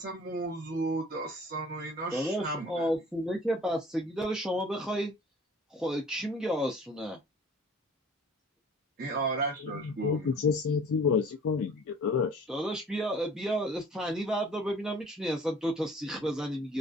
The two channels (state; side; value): normal; both; correlation 0.49